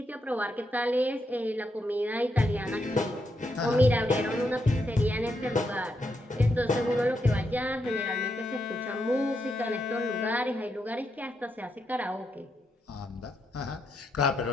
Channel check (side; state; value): both; normal; correlation 0.81